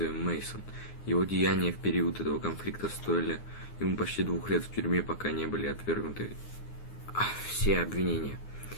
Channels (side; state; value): right; late; 9.6 ms